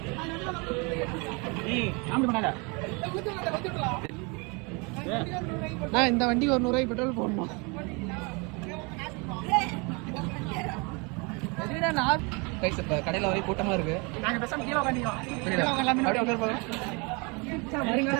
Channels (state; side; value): quieter; left; 30.3 dB